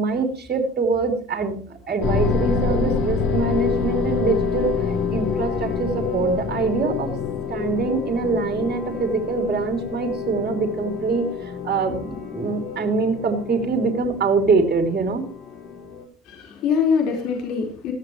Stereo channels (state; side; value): normal; both; correlation 0.42